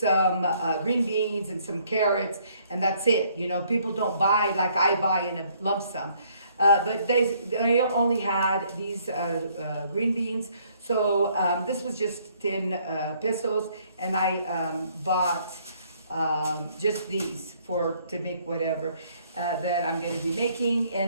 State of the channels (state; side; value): inverted; both; correlation -0.65